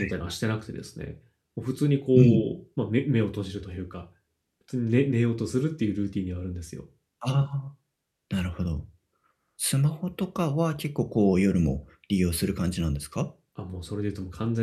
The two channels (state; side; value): identical; both; correlation 1.00